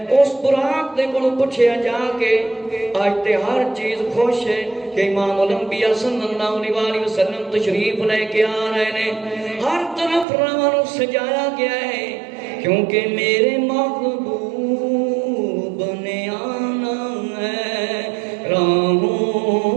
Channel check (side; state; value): left; drops out; at 10.2 s